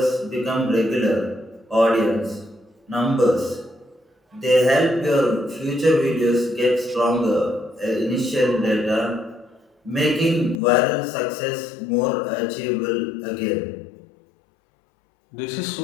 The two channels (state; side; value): drops out; right; at 10.6 s